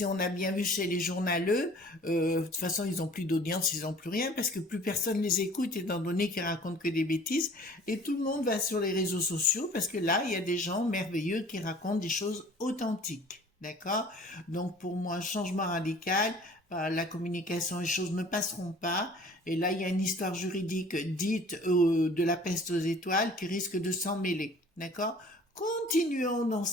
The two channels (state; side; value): normal; both; correlation 0.49